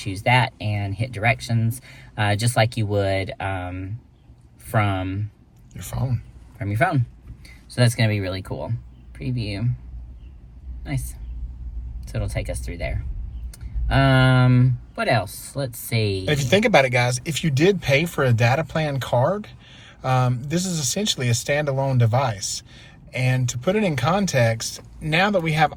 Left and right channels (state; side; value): identical; both; correlation 1.00